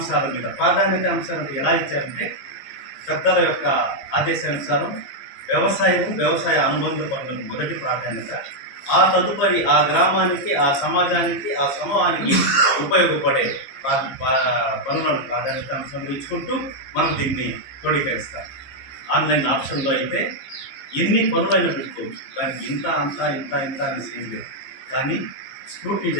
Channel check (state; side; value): late; right; 15 ms